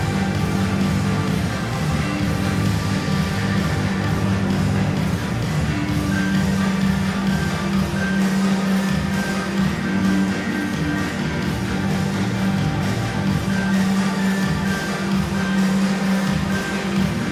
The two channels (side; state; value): both; identical; correlation 1.00